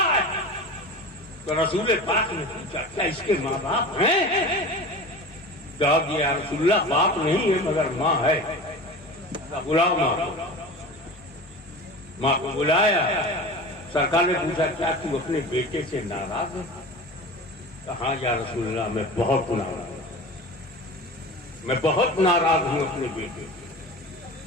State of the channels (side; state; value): both; normal; correlation 0.33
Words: है, तो रसूल पाक ने पूछा क्या इसके माँ बाप हैं? जवाब दिया रसूलुल्लाह बाप नहीं है मगर माँ है। बुलाओ माँ को बुलाया। सरकार ने पूछा क्या तू अपने बेटे से नाराज है? कहा या रसूलुल्लाह मैं बहुत नाराज, मैं बहुत नाराज हूं अपने बेटे से,